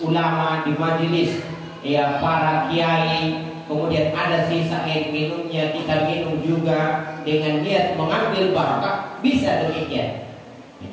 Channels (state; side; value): identical; both; correlation 1.00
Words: ulama, di majelis ya para kiai, kemudian ada sisa air minumnya, kita minum juga dengan niat mengambil barakah, bisa demikian.